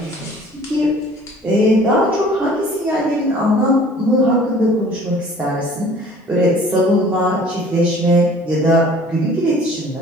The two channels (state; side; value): normal; both; correlation 0.50